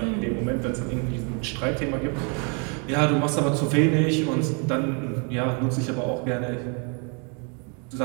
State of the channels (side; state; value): left; quieter; 36.5 dB